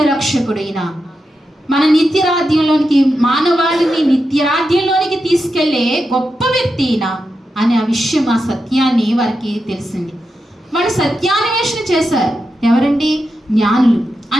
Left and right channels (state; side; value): normal; both; correlation 0.88